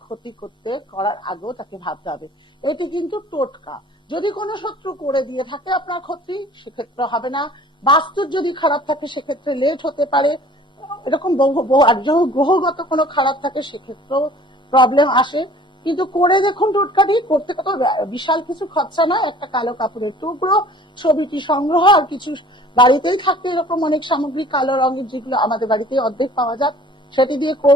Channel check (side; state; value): both; normal; correlation 0.50